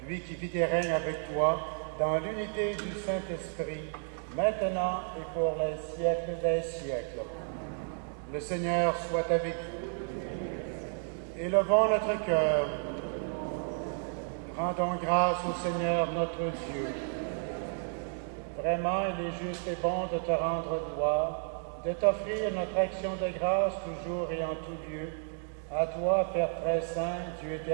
lui qui vit et règne avec toi dans l'unité du Saint-Esprit, maintenant et pour les siècles des siècles. Le Seigneur soit avec vous. Élevons notre cœur. Rendons grâce au Seigneur notre Dieu. Vraiment, il est juste et bon de te rendre gloire, de t'offrir notre action de grâce toujours et en tout lieu, à toi, Père très saint, Dieu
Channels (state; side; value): silent; left; 56 dB below the other